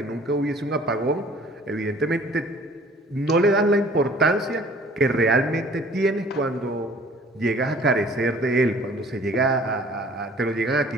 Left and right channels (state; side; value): normal; both; correlation 0.52